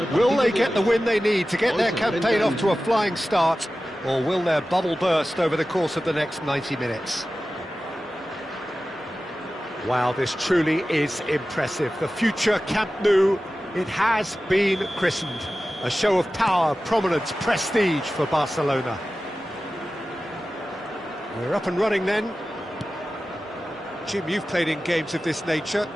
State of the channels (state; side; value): normal; both; correlation 0.95